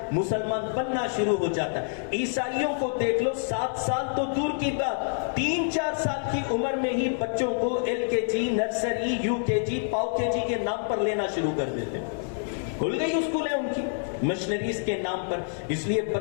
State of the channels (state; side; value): silent; right; digital silence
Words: مسلمان بننا شروع ہو جاتا ہے. عیسائیوں کو دیکھ لو، 7 سال تو دور کی بات، 3-4 سال کی عمر میں ہی بچوں کو LKG، نرسری، UKG، پاؤ KG کے نام پر لینا شروع کر دیتے ہیں. کھل گئی اسکول ہے ان کی مشنریز کے نام پر. اس لیے